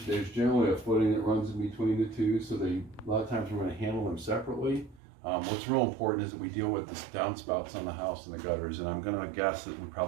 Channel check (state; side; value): drops out; left; at 5.0 s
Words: there's generally a footing that runs in between the two, so a lot of times we're going to handle them separately. What's real important is that we deal with the downspouts on the house and the gutters, and I'm going to guess that we